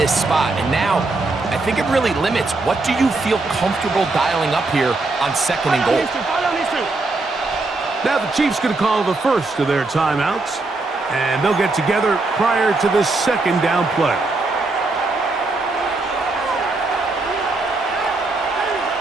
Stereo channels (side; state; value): left; quieter; 3.3 dB